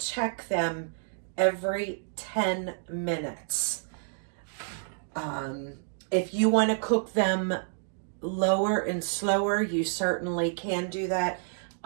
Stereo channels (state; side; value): silent; left; digital silence